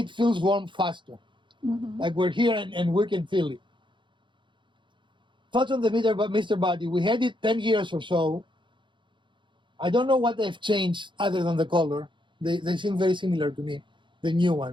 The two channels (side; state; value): left; late; 0.23 ms